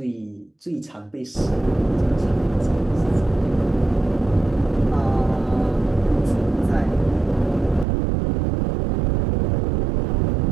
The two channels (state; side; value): drops out; left; at 7.9 s